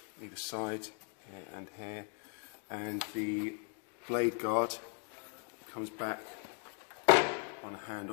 either side, here and here. And the blade guard comes back on a hand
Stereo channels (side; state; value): right; quieter; 39.3 dB